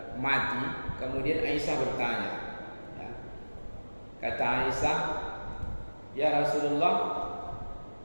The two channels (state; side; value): inverted; both; correlation -1.00